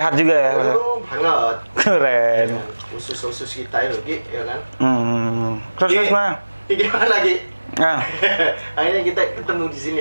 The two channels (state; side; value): inverted; both; correlation -1.00